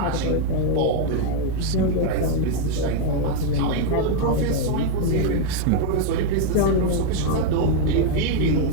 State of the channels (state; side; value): different; both; correlation 0.00